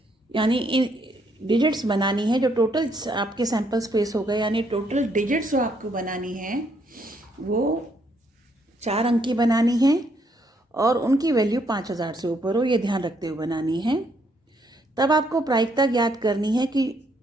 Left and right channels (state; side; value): normal; both; correlation 0.72